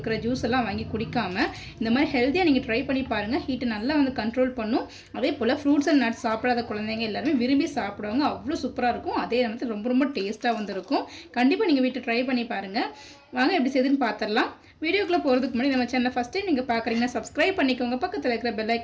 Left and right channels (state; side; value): identical; both; correlation 1.00